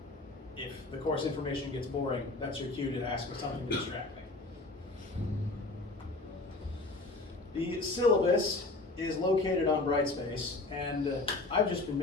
If the course information gets boring, that's your cue to ask for something to distract me. The syllabus is located on Brightspace, and I've just been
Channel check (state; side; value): quieter; right; 3.1 dB